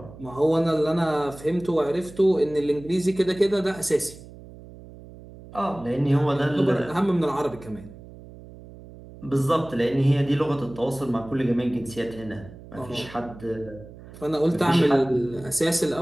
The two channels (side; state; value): right; noise; hum, 18 dB below the sound